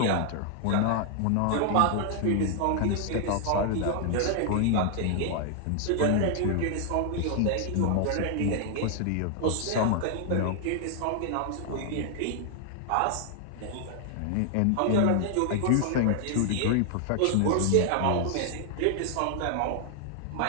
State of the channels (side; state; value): both; different; correlation 0.00